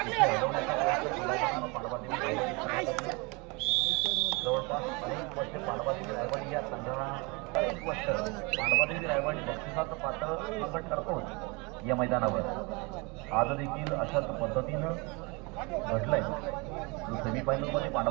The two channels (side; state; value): left; quieter; 28.4 dB